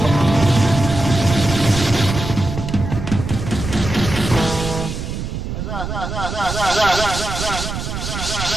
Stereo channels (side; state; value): right; noise; rumble, 5 dB below the sound